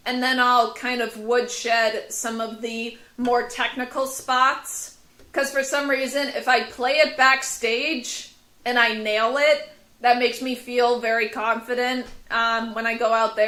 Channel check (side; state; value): both; identical; correlation 1.00